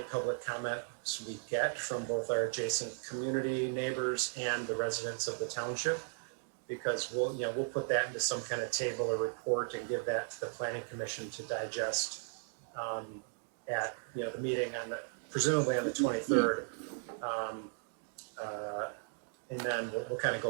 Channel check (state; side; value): silent; left; digital silence